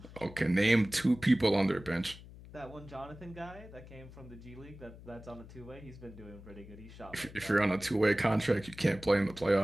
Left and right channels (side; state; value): left; noise; hum, 17 dB below the sound